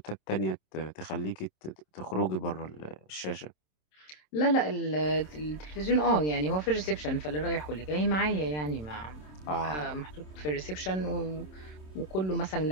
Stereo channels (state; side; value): late; right; 27 ms